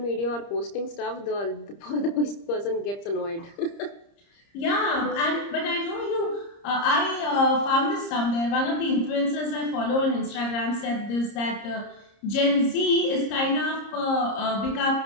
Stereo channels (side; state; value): right; late; 30 ms